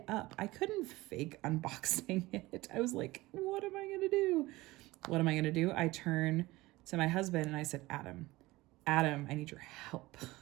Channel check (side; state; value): left; quieter; 19.6 dB